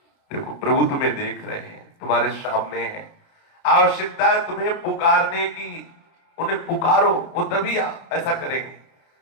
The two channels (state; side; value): late; right; 30 ms